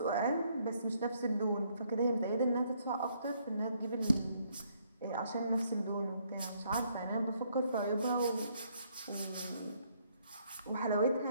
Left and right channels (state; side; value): inverted; both; correlation -0.69